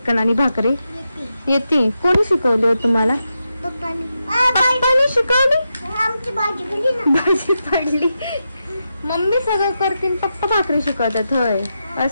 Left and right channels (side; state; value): both; inverted; correlation -0.87